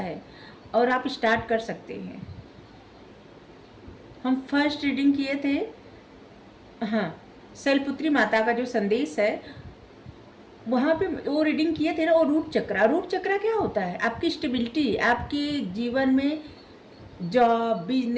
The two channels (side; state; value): both; identical; correlation 1.00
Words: और आप स्टार्ट कर सकते हैं। हम फर्स्ट रीडिंग किए थे, हाँ, शैलपुत्री माता का जो संदेश है, वहाँ पे वो रीडिंग किए थे ना। और रूट चक्रा, रूट चक्रा क्या होता है? आपकी स्टेबिलिटी, आपके जीवन में जॉब,